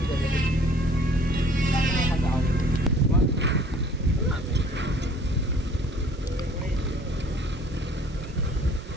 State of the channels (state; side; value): normal; both; correlation 0.53